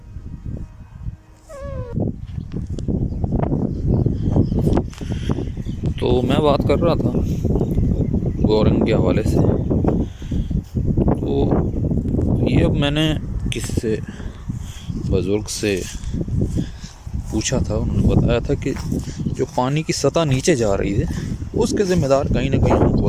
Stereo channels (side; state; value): both; identical; correlation 1.00